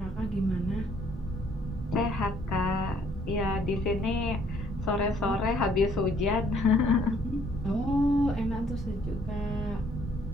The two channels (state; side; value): normal; both; correlation 0.64